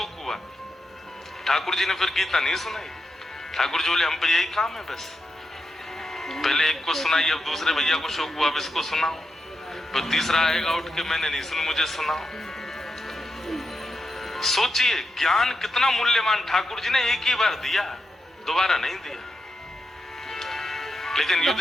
हुआ। ठाकुर जी ने फिर गीता नहीं सुनाई। ठाकुर जी बोले, हम पे यही काम है बस, पहले एक को सुनाई, अब दूसरे भैया को शोक हुआ, अब इसको सुनाओ, फिर तीसरा आएगा उठ के, मैंने नहीं सुनी, मुझे सुनाओ। सोचिए ज्ञान कितना मूल्यवान। ठाकुर जी ने एक ही बार दिया, दोबारा नहीं दिया। लेकिन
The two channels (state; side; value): normal; both; correlation 0.86